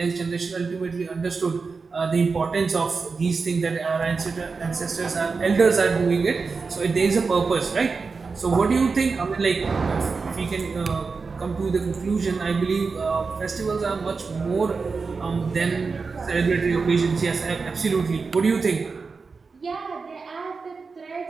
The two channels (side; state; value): left; quieter; 4.6 dB